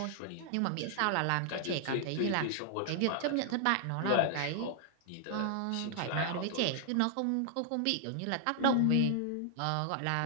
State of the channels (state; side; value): different; both; correlation -0.01